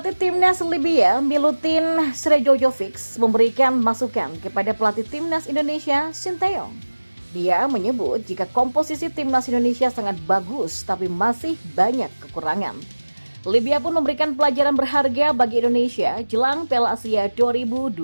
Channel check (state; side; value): inverted; both; correlation -1.00